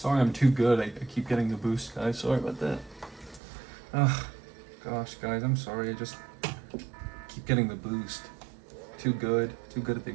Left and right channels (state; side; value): drops out; left; at 3.4 s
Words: I'm too good. I keep getting the boost, guys. Sorry about that. Ugh. Gosh, guys, I'm sorry. I just keep getting the boost. Too good. Too good at the